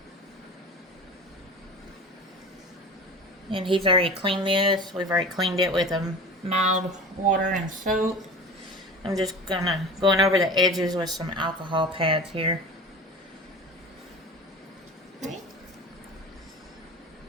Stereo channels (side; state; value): both; normal; correlation 0.35